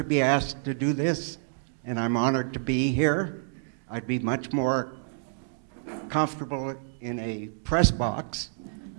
be asked to do this, and I'm honored to be here. I'd be much more comfortable in a press box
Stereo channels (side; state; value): left; silent; digital silence